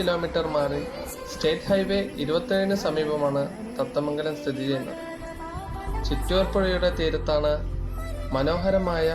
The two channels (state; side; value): identical; both; correlation 1.00